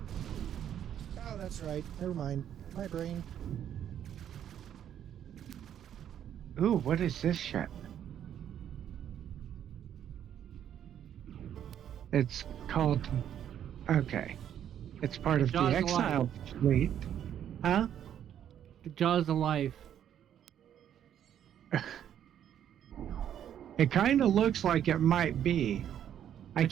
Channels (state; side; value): quieter; left; 9.9 dB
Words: Oh, that's right. Never mind. My brain. Ooh, what is this ship? It's called... Okay. It's part of the Jaws of Exile fleet. Huh? The Jaws of Life. It kind of looks like it might be. I